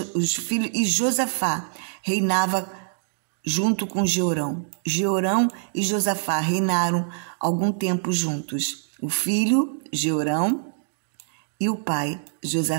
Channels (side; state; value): left; silent; digital silence